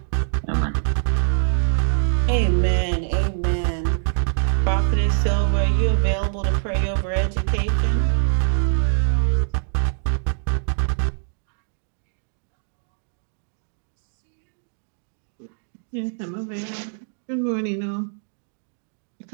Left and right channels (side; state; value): left; silent; digital silence